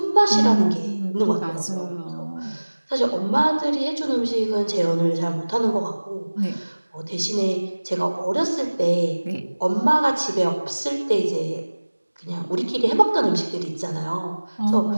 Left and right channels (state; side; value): inverted; both; correlation -1.00